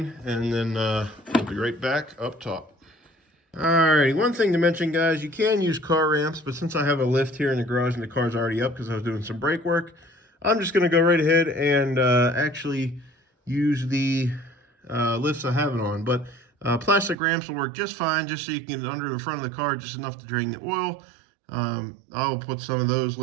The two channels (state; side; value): drops out; left; at 17.2 s